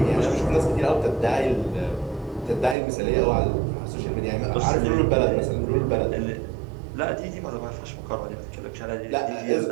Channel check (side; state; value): left; drops out; at 2.8 s